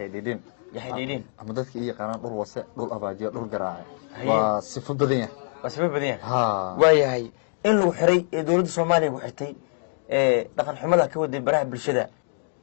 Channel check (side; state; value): right; silent; digital silence